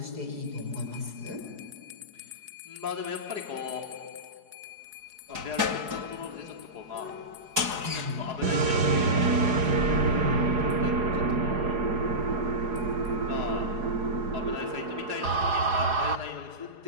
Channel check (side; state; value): left; late; 4.8 ms